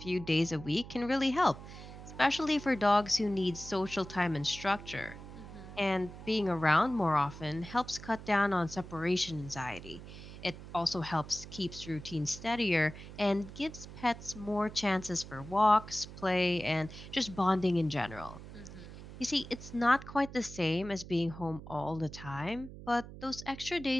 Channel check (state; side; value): noise; right; hum, 14 dB below the sound